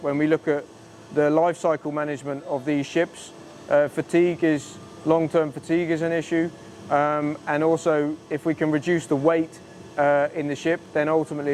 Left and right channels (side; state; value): both; identical; correlation 1.00